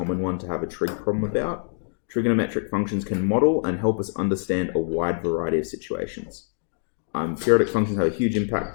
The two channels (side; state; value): right; silent; 62 dB below the other